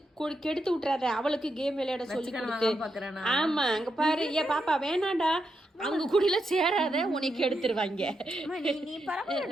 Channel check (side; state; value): both; normal; correlation 0.84